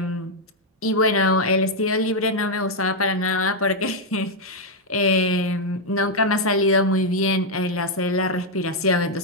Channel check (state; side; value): normal; both; correlation -0.01